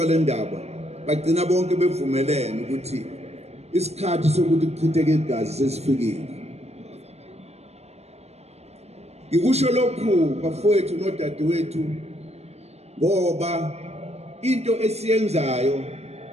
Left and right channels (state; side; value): late; left; 0.31 ms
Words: le ndaba, bagcina bonke bevumelene ukuthi isikhathi sokuthi kuchitheke igazi sesifikile. Ngikusho lokhu bafowethu nodadewethu ngoba into esiyenzayo